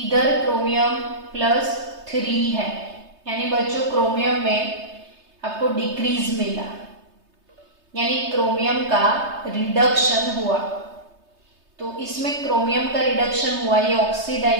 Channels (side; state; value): left; late; 3.3 ms